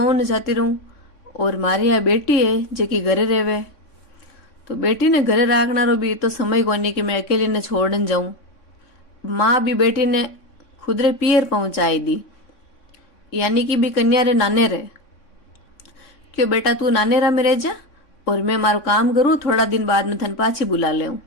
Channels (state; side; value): late; right; 3.6 ms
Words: जाती रहूं और मारी यहाँ बेटी है जेकी घरे रेवे। तो बेटी ने घरे राखना रो भी तो समय कोनी कि मैं अकेली ने छोड़न जाऊं। माँ भी बेटी ने खुदरे पियर पहुंचाई दी, यानी कि भी कन्या रे नाने रे। क्यों बेटा तू नाने रा में रह जा और मैं मारो काम करूं, थोड़ा दिन बाद में थन पाछी बुला ले।